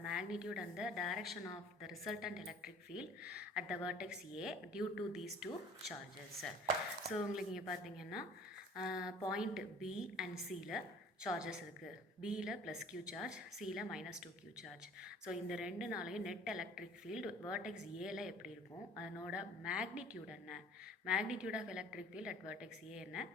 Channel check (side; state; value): both; normal; correlation 0.50